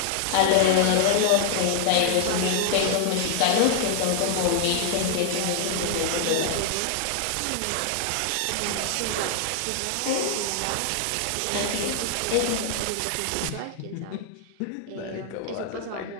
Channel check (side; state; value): both; different; correlation 0.00